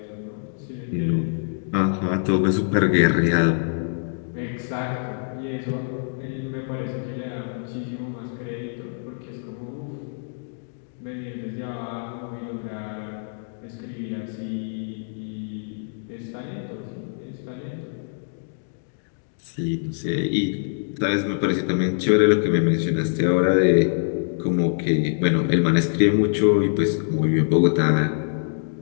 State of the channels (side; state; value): right; silent; digital silence